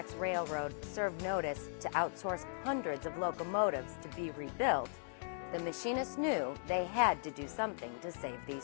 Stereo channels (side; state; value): right; silent; digital silence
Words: Railroad served notice to outsource hundreds of locomotives to be rebuilt, the machinists knew they had to do something to save